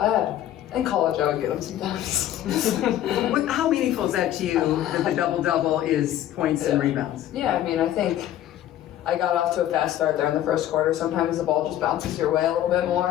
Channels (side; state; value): right; quieter; 12.3 dB